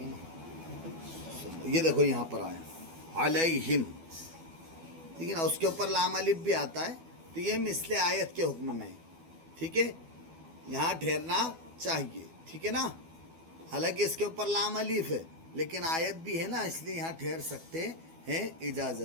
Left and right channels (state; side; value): late; left; 12 ms